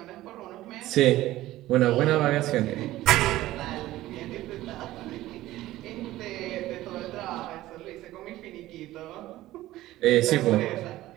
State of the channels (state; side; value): quieter; left; 15.9 dB